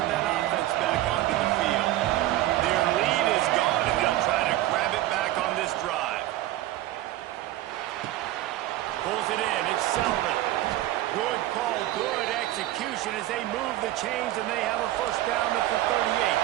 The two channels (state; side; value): quieter; left; 15.2 dB